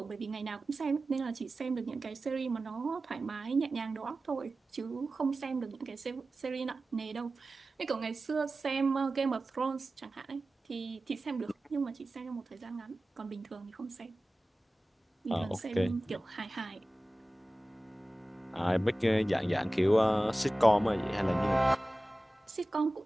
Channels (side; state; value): both; normal; correlation 0.96